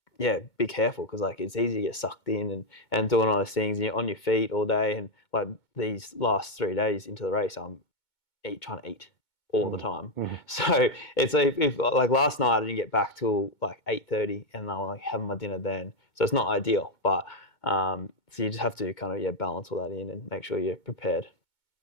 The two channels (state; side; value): late; right; 2.2 ms